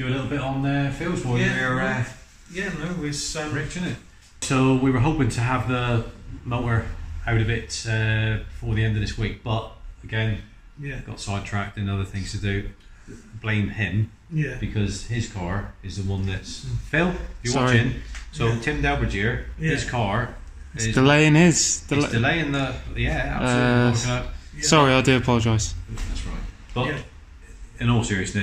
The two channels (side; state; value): both; identical; correlation 1.00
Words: a little bit on Phil's for you here, It's Rich, isn't it? So we were hoping to have the motor out of it before the end of this week, but again, got sidetracked and other things to do. Blame him. Yeah. Because his car is the one that's Phil. If you're Sorry. watching, so Yeah. Tim Delbergier, his car It's is delaying his. delaying the absolutely. Sorry, I do apologise. That's right. But Yeah. in all